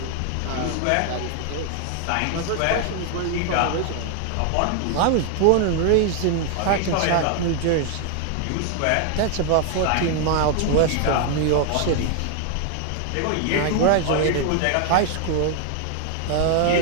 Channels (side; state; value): both; different; correlation 0.00